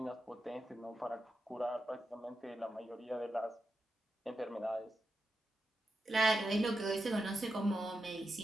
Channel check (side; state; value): both; normal; correlation 0.88